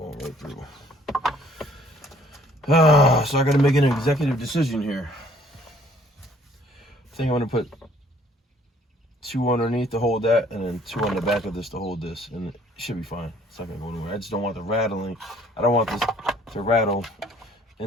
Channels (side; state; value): both; normal; correlation 0.59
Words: right through. So I gotta make an executive decision here. I think I'm gonna put 2 underneath to hold that, and then 2 on the back of this to hold this, and it should be fine. It's not gonna go anywhere. I just don't want the rattling. I don't want this to rattle